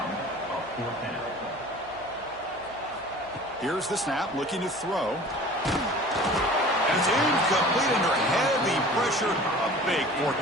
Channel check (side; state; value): right; noise; hum, 26 dB below the sound